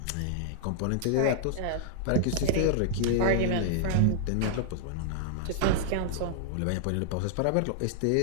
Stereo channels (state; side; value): different; both; correlation -0.01